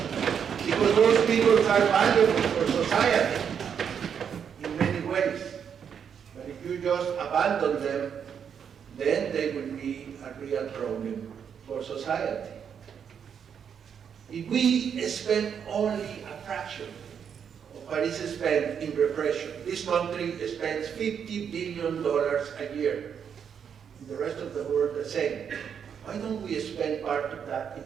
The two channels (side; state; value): left; quieter; 7.6 dB